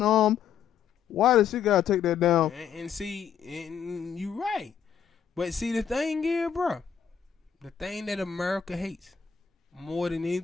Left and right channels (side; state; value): right; quieter; 7.9 dB